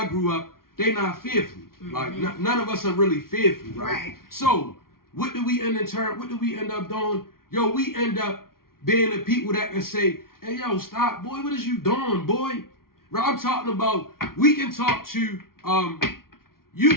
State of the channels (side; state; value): right; late; 0.93 ms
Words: grew up, they not fearful. Like none of us are really fearful, right? So what do we end up doing? Yo, we end up being the people that can say, hey, yo, stop, boy, what is you doing, boy? Right, I'm talking about, we can talk to,